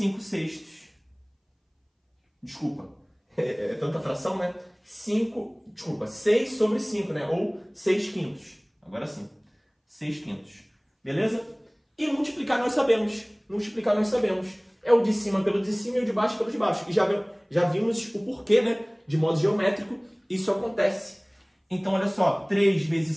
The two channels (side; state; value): both; identical; correlation 1.00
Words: sextos. Desculpa, é tanta fração, né? 6 sobre 5, né? Ou 6 quintos. Agora sim, 6 quintos. Beleza? E multiplicar nós sabemos. É o de cima pelo de cima e o de baixo pelo de baixo. E já vimos o porquê, né? De modo geométrico, isso acontece. Então, olha só, 3 vezes